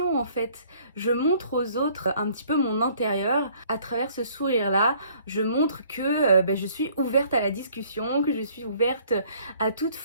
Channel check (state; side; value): inverted; both; correlation -0.58